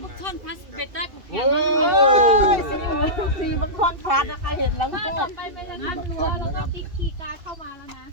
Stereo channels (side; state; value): left; late; 2.8 ms